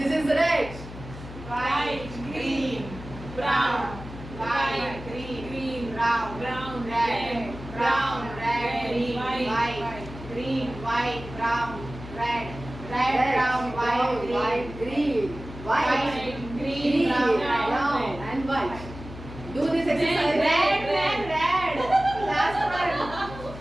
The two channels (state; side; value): noise; left; hum, 13 dB below the sound